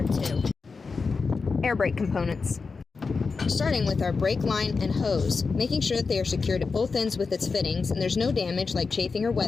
2. Air brake components. Starting with our brake line and hose, making sure that they are secured at both ends with its fittings and there's no damage like chafing or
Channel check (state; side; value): quieter; right; 4.6 dB